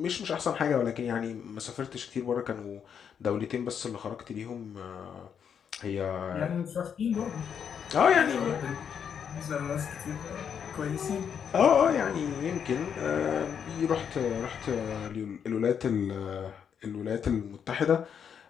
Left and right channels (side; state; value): right; quieter; 7.7 dB